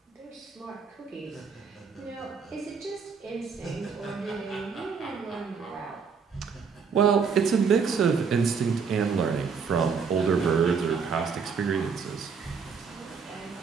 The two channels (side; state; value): left; quieter; 5.8 dB